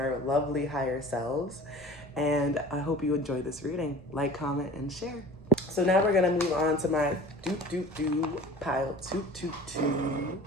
lovely higher selves. And I hope you enjoy this reading. Like, comment, and share. So now we're going to move on to my pile 222s.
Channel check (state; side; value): normal; both; correlation 0.42